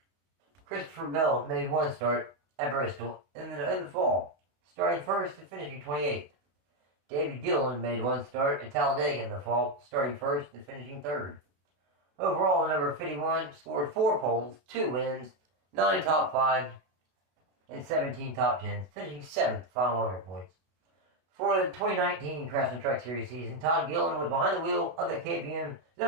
Christopher Bell made 1 start at Bristol in the fall, starting first and finishing 28th. David Gillen made 1 start at Talladega in the fall, starting first and finishing 3rd. Overall, number 51 scored 4 poles, 2 wins, 9 top 5s, and 17 top 10s, finishing 7th final owner points. For the 2019 Craftsman Truck Series season, Todd Gillen was behind the wheel of the KBM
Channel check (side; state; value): left; late; 32 ms